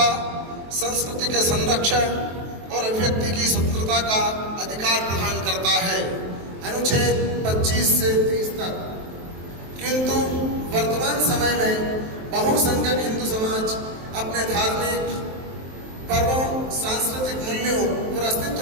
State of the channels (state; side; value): late; left; 23 ms